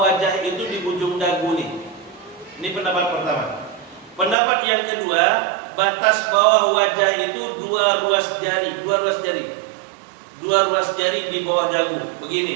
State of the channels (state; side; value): drops out; left; at 4.4 s